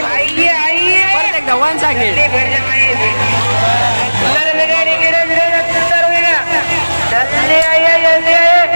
परत एकदा वन सेकंड.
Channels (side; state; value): both; inverted; correlation -1.00